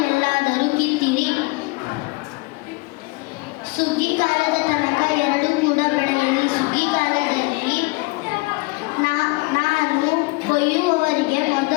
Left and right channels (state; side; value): quieter; right; 25.2 dB